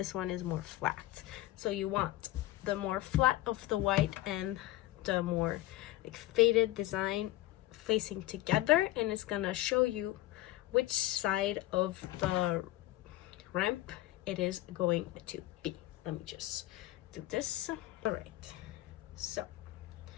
one is more flat. So you want the more flat of the white and the more like faded design facing together, and it's gonna show you which side of the ramp it is going to be. Let me just do this. All right, so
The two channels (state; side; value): quieter; right; 16.1 dB